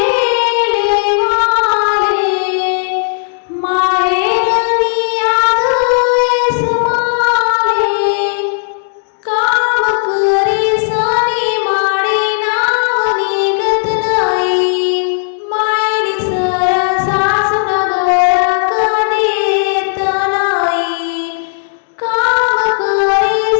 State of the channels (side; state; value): right; silent; digital silence